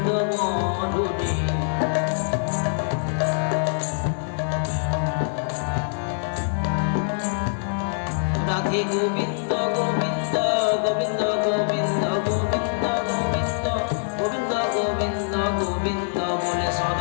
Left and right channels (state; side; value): silent; right; 61 dB below the other